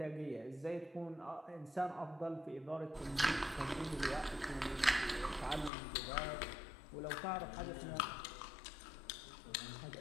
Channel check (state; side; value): drops out; right; at 5.7 s